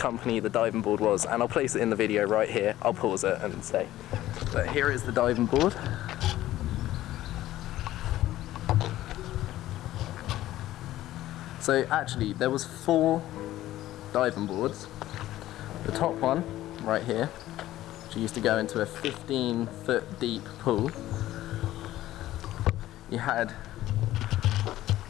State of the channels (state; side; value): quieter; right; 14.6 dB